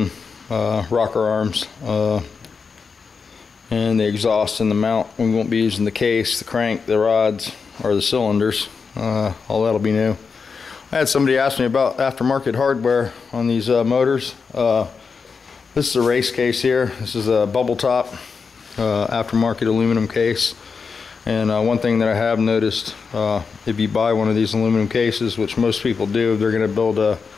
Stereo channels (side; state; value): right; quieter; 5.3 dB